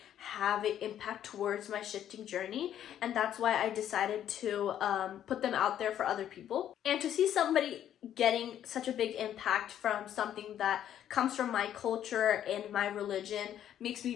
have an impact towards my shifting journey, and that's why I decided to put them out there for other people. And to see somebody getting such a big impact from something that comes from my culture and my religion makes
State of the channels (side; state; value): right; quieter; 10.6 dB